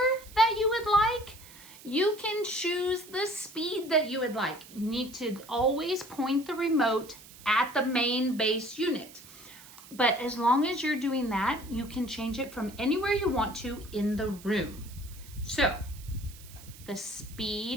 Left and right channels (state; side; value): noise; right; hiss, 19 dB below the sound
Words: that you would like. You can choose the speed that you would like. You need to always point the remote at the main base unit. But as long as you're doing that, you can change it from anywhere you want to in the room. So the